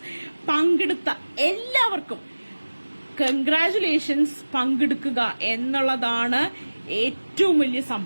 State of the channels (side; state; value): both; inverted; correlation -1.00